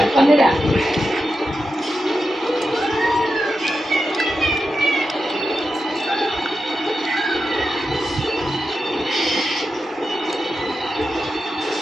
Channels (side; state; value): both; normal; correlation 0.89